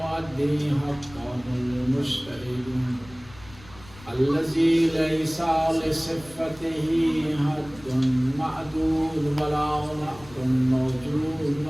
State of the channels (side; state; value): left; noise; rumble, 21 dB below the sound